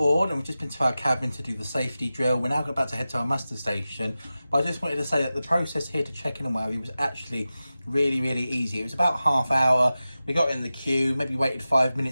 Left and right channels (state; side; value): inverted; both; correlation -0.95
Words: and we've just been to our cabin to do the safety drill. We're now about to head to our muster station. But I just wanted to say that the process here to check in and whatever was actually really, really easy. It was about half hour. We got in the queue, maybe waited 5